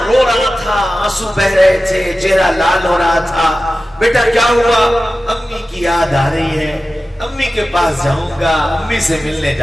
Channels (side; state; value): both; normal; correlation 0.94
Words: رو رہا تھا، آنسو بہ رہے تھے، چہرہ لال ہو رہا تھا۔ بیٹا کیا ہوا؟ امی کی یاد آ رہی ہے، امی کے پاس جاؤں گا، امی سے ملنے